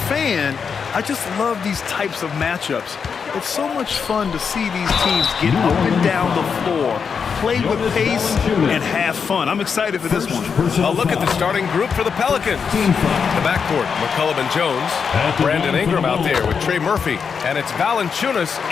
I just love these types of matchups. It's so much fun to see these teams get up and down the floor, play with pace, and have fun. I'm excited for this one. A look at the starting group for the Pelicans. The backcourt, McCollum and Jones. Brandon Ingram out there with Trey Murphy. And it's Valanciunas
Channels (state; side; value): quieter; right; 6.2 dB